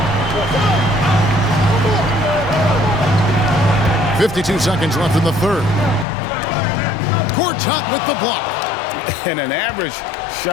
52 seconds left in the third. Gortat with the block. And an average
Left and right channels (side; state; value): right; drops out; at 6.1 s